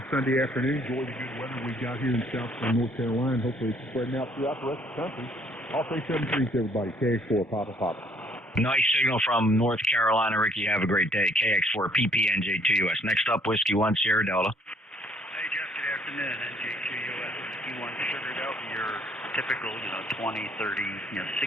Sunday afternoon. Enjoy the good weather we got here in South North Carolina. Hopefully it's spreading out throughout the rest of the country. I'll say 7-3 to everybody. KX4, Papa Papa. Nice signal from North Carolina, Ricky. Have a great day. KX4, PP, NJ2US. Next up, Whiskey 1, Sierra Delta. Hey, Jeff. Good afternoon. NJ2US, Whiskey 1, Sugar Delta. Your typical, 20, 30,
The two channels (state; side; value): normal; both; correlation 0.63